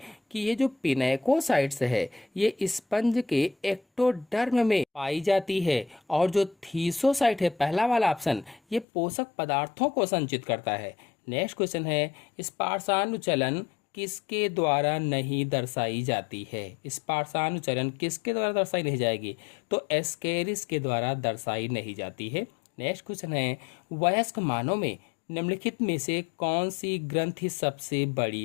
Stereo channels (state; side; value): drops out; right; at 8.8 s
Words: कि ये जो पिनेकोसाइट्स है ये स्पंज के एक्टोडर्म में पाई जाती है। और जो थीसोसाइट है, पहला वाला ऑप्शन, ये पोषक पदार्थों को संचित करता है। नेक्स्ट क्वेश्चन है, स्पर्शानुचलन किसके द्वारा नहीं दर्शाई जाती है? स्पर्शानुचलन किसके द्वारा दर्शाई नहीं जाएगी? तो एस्केरिस के द्वारा दर्शाई नहीं जाती है। नेक्स्ट क्वेश्चन है, वयस्क मानव में निम्नलिखित में से कौन सी ग्रंथि सबसे बड़ी